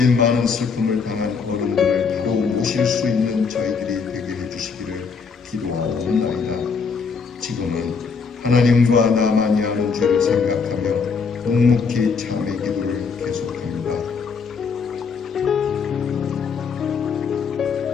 많은 슬픔을 당한 어른들을 바로 모실 수 있는 저희들이 되게 해주시기를 기도하옵나이다. 지금은 하나님과 나만이 아는 죄를 생각하며 묵묵히 참의 기도를 계속합니다.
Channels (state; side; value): quieter; right; 5.5 dB